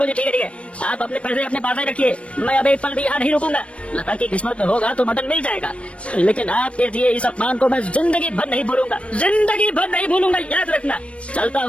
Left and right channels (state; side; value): late; right; 0.061 ms